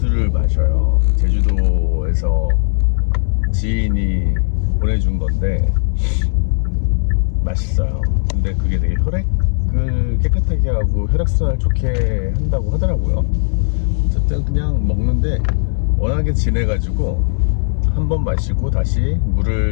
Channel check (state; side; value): silent; right; digital silence